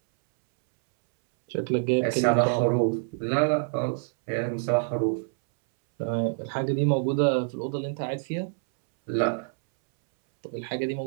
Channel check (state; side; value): silent; left; 61 dB below the other